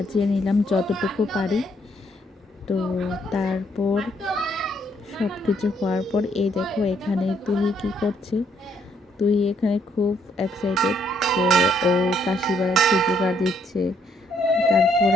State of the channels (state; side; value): normal; both; correlation 0.70